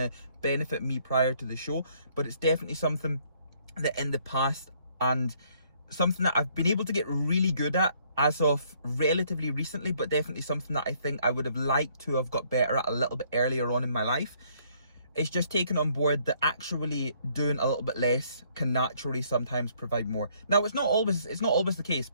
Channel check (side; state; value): both; inverted; correlation -0.65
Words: benefit me prior to the show. But it's definitely something that in the past, and something that I've been able to get really good at as of relatively recently, but definitely something that I think I would have liked to have got better at a little bit earlier on in my life. It's just taking on board that actually doing a little bit less can naturally sometimes provide more. Now, it's not always the case,